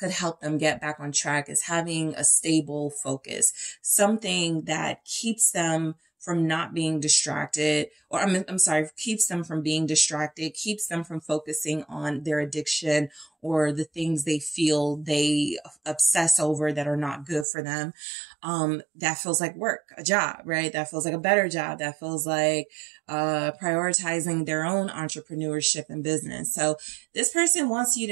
help them get back on track is having a stable focus, something that keeps them from not being distracted, or I'm sorry, keeps them from being distracted, keeps them from focusing on their addiction or the things they feel they obsess over that are not good for them. That feels like work, a job, right? That feels like a better job. That feels like prioritizing their own entrepreneurship and business. So this person wants you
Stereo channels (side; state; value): left; drops out; at 17.4 s